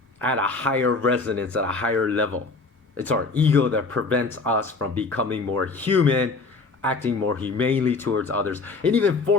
at a higher resonance, at a higher level. It's our ego that prevents us from becoming more human, acting more humanely towards others, and even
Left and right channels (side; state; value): right; quieter; 3.9 dB